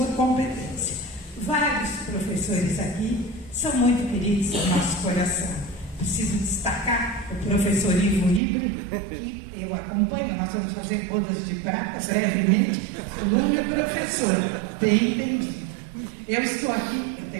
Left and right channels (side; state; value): left; drops out; at 8.4 s